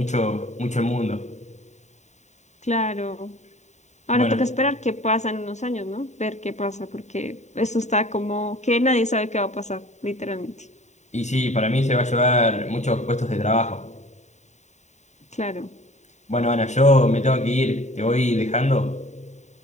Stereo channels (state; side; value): late; right; 0.34 ms